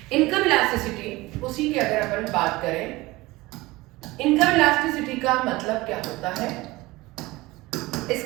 इनकम इलास्टिसिटी उसी की अगर अपन बात करें, इनकम इलास्टिसिटी का मतलब क्या होता है?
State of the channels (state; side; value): quieter; left; 20.6 dB